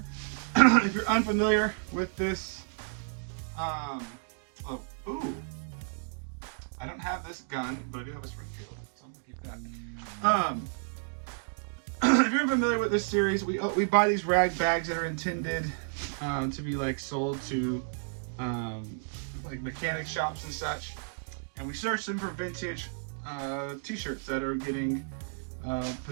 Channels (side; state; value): left; silent; digital silence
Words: If you're unfamiliar with this, I don't have this gun, but I do have a Springfield, so I'm gonna keep that. If you're familiar with this series, we buy these rag bags that are intended to be like sold to like mechanic shops and such, and we search them for vintage t-shirts that are getting